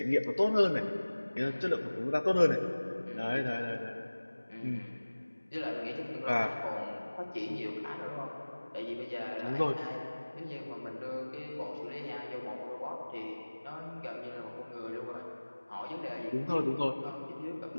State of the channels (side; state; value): both; inverted; correlation -1.00